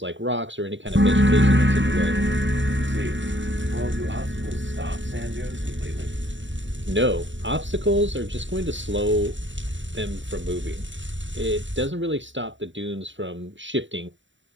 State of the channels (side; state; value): left; late; 0.54 ms